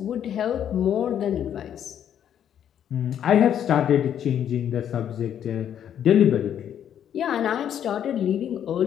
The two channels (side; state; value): right; quieter; 9.6 dB